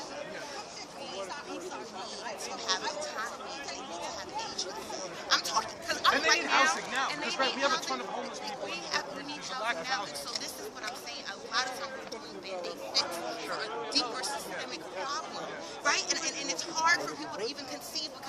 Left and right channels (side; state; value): both; identical; correlation 1.00